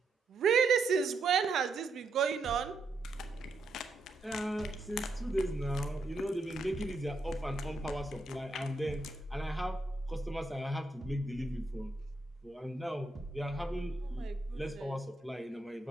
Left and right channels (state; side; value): quieter; left; 3.1 dB